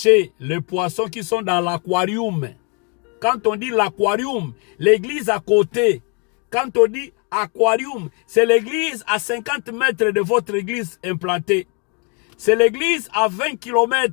les poissons qui sont dans l'aquarium. Quand on dit l'aquarium, l'église à côté. Quand on dit aquarium, c'est l'église à 50 mètres de votre église implantée. C'est l'église à 20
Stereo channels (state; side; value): quieter; right; 35.2 dB